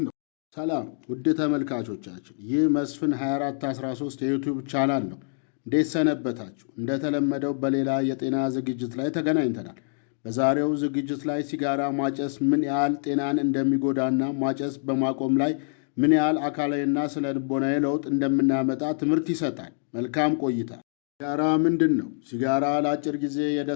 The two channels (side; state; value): right; silent; digital silence